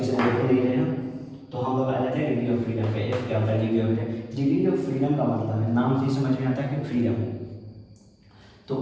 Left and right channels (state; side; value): identical; both; correlation 1.00